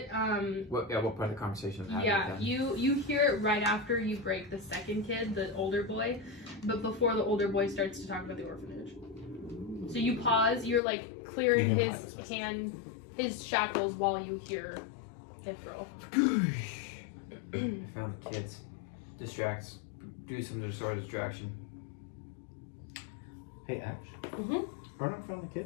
What part of the conversation is happening yeah, then? you hear it right after you break the second kid, the older boy, but before the older boy starts to talk about the orphanage. So you pause, you're like clearing his shackles while you hear Ithril. I found the kids. Distracts. Do some sort of distraction. Hey, Ash. Mm-hmm. Ernok found the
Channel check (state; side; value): drops out; right; at 10.8 s